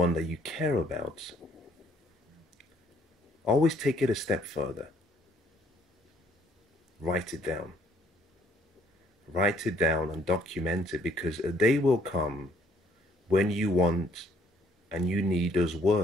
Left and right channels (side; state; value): both; normal; correlation 0.64